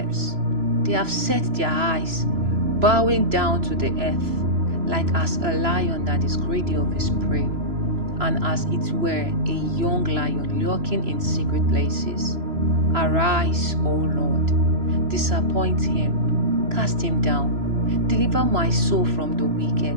They have set their eyes, bowing down to the earth, like as a lion that is greedy of his prey, and as it were a young lion lurking in secret places. Arise, O Lord, disappoint him, cast him down, deliver my soul from the wicked,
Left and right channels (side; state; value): left; late; 3.0 ms